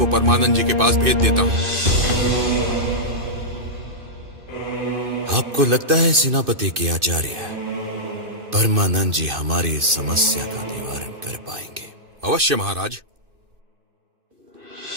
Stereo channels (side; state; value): left; late; 2.6 ms